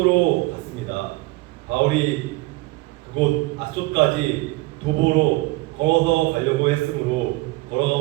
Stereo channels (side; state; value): left; quieter; 21.5 dB